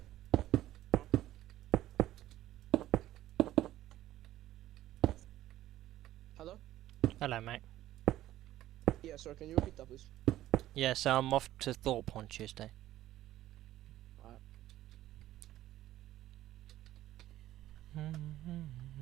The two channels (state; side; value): quieter; left; 14.1 dB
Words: Hello? Hello, mate. Yeah, sir, can you repeat that, please? Yeah, so I'm off to Thorpe on Tuesday. Alright.